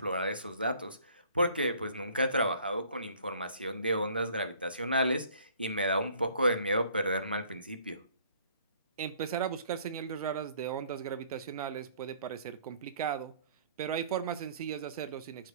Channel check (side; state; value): both; inverted; correlation -0.57